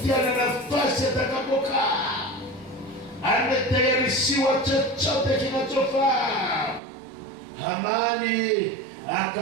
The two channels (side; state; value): left; drops out; at 6.8 s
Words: na nafasi atakapokaa, ametayarishiwa chochote kinachofaa. Hamani